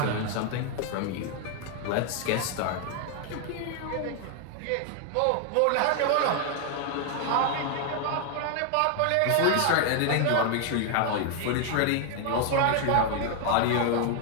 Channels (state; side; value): different; both; correlation 0.00